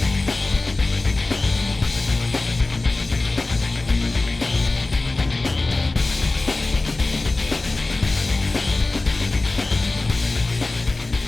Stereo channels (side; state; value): right; quieter; 3.2 dB